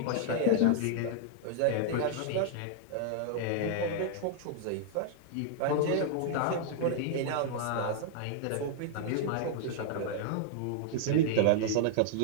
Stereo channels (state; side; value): different; both; correlation -0.01